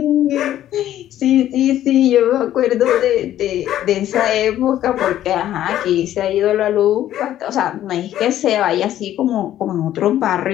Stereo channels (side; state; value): right; quieter; 12.3 dB